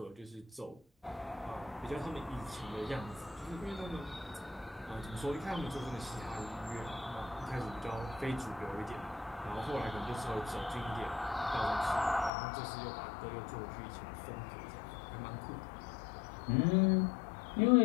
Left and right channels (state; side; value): drops out; right; at 12.3 s